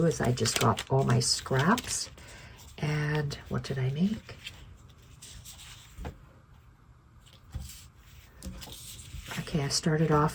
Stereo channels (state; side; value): identical; both; correlation 1.00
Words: is I just got all my scraps, and what did I make? Okay, I started